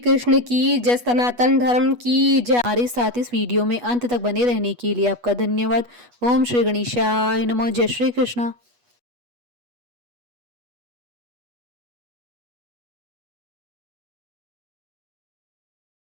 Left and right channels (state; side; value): late; left; 8.2 ms